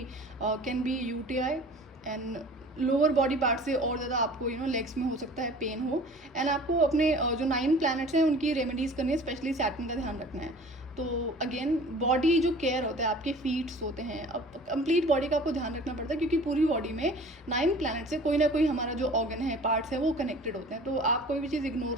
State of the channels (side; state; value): both; normal; correlation 0.45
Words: can be UTI, and lower body part से और ज़्यादा आपको लेग्स में हो सकता है पेन हो। एंड आपको अपने जो 9 प्लैनेट्स हैं उनकी रेमेडीज़ करनी है, स्पेशली सैटर्न का ध्यान रखना है। तो अगेन बॉडी जो केयर होता है, आपके फीट्स होते हैं, अब कंप्लीट बॉडी का आपको ध्यान रखना पड़ता है, क्योंकि पूरी बॉडी में 9 प्लैनेट से कोई ना कोई हमारा जो ऑर्गन है, पार्ट्स है, वो कनेक्टेड होते हैं। तो आप कोई भी चीज़